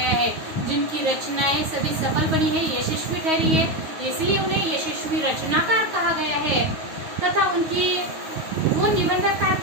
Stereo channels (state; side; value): late; left; 9.4 ms